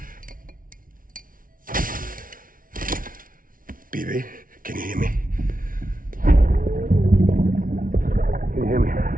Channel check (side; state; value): left; late; 0.40 ms